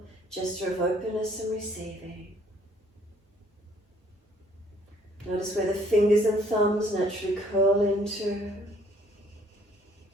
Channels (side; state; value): both; normal; correlation 0.62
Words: gesture of openness and receiving. Notice where the fingers and thumbs naturally curl into.